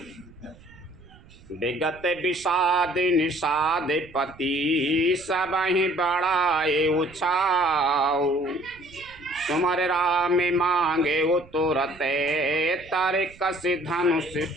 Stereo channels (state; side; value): noise; right; rumble, 24 dB below the sound